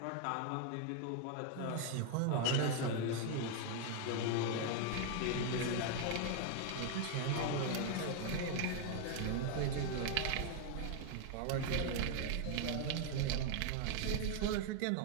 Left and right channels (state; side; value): different; both; correlation 0.00